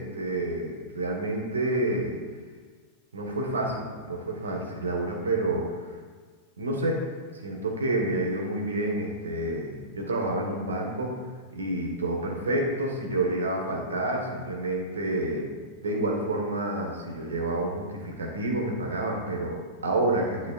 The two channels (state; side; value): inverted; both; correlation -0.30